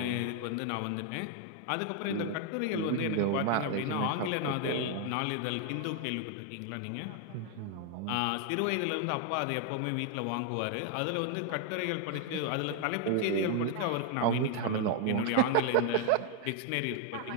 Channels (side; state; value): both; different; correlation 0.00